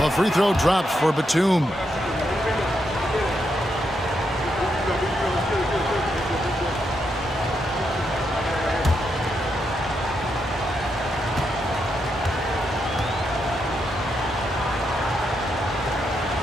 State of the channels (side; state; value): both; normal; correlation 0.81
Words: free throw drops for Batum.